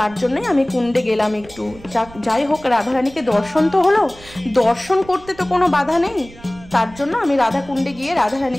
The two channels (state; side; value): noise; right; rumble, 21 dB below the sound